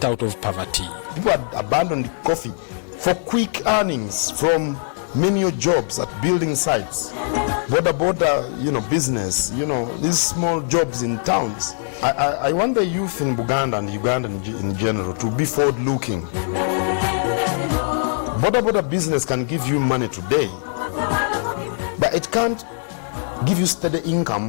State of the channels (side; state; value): right; silent; digital silence